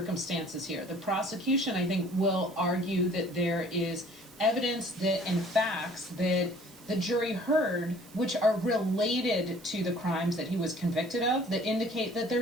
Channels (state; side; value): noise; right; hiss, 23 dB below the sound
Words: here. The prosecution, I think, will argue that there is evidence that and facts that the jury heard, which are related to the crimes that he was convicted of, that indicate that